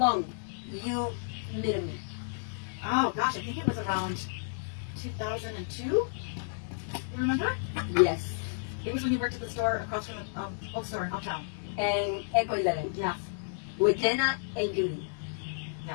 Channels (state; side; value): silent; right; digital silence